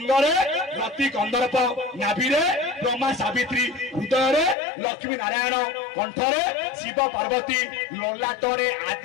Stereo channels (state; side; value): drops out; right; at 4.5 s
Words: रति कंदर्प नाभि ब्रह्मा सावित्री हृदय लक्ष्मी नारायण कंठरे शिव पार्वती ललाटरे